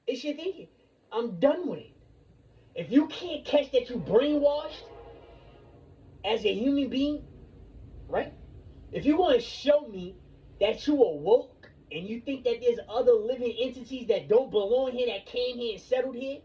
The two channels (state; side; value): identical; both; correlation 1.00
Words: It's your thinking. I'm done with it. If you can't catch that you brainwashed as a human being, right? If you want to show me that you are woke and you think that there's other living entities that don't belong here, that came here and settled here,